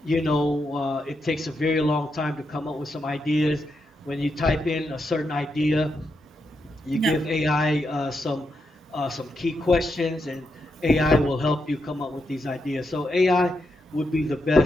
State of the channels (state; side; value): normal; both; correlation 0.83